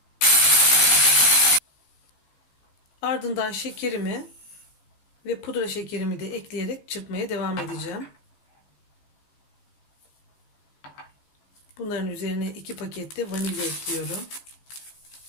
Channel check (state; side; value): late; right; 15 ms